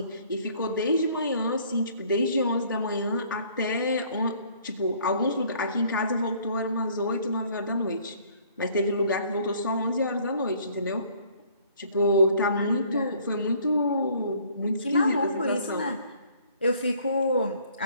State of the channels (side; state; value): both; inverted; correlation -0.59